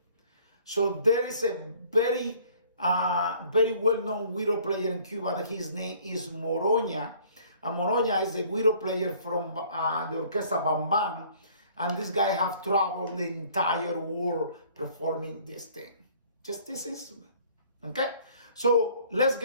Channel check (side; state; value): both; inverted; correlation -0.56